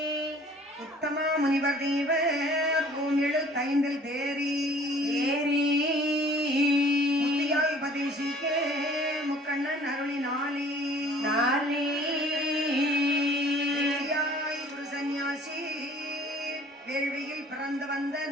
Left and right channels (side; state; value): both; normal; correlation 0.52